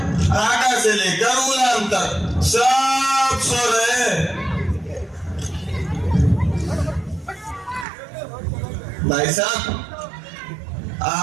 आका से लेकर गुलाम तक, सब सो रहे। भाई साहब,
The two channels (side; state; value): left; drops out; at 7.9 s